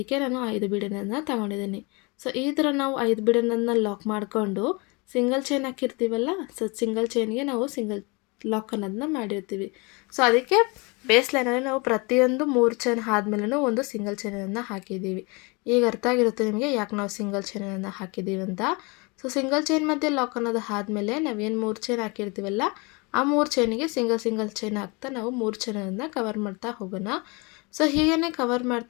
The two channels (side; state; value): right; quieter; 28.6 dB